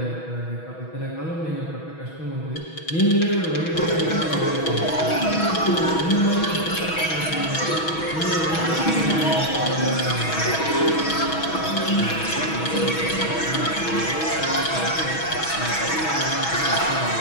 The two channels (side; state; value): right; late; 6.2 ms